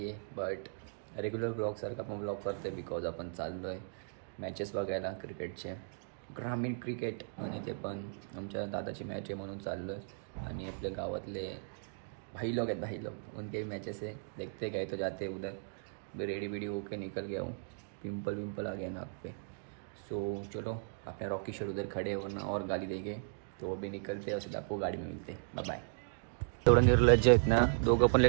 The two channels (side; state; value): left; silent; digital silence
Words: आहे, but regular ब्लॉगसारखा आपण ब्लॉग करतो आहे बिकॉज आपण चाललो आहे मॅचेस बघायला क्रिकेटचे, ग्रामीण क्रिकेट. आणि ते पण आमच्या दादाची मॅच आहे म्हणून चाललो आहे. आणि आपल्या गावातले भाई लोग आहेत, भाई लोग उनके भी मैचेस है, देखते गए तो जाते उधर रेडी वेडी होके निकल गया हूँ. पिंपल विंपल आ गया नाक पे. सो चलो, अपने रॉकी शर्ट उधर खड़े वरना और गाली देंगे, तो वो भी निकलते हैं और सीधा आपको गाड़ी में मिलते. Bye bye. एवढं निर्लज्ज आहेत ना दोघं, पण